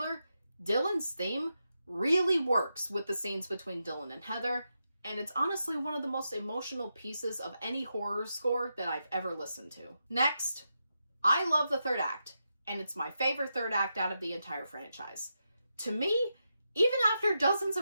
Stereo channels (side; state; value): both; inverted; correlation -0.86